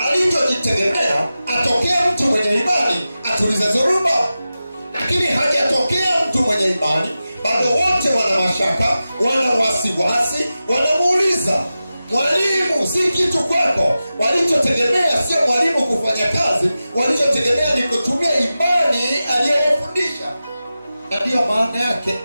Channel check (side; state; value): both; inverted; correlation -0.94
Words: Alichojitegemea atokea mtu mwenye imani atulize dhoruba, lakini hajatokea mtu mwenye imani. Bado wote wana mashaka, wana wasiwasi, wanamuuliza mwalimu, si kitu kwako. Walichotegemea sio mwalimu kufanya kazi, walichotegemea ni kutumia imani aliyowafundisha. Na ndiyo maana yake